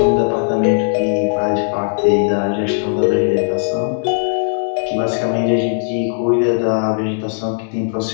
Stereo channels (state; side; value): silent; right; digital silence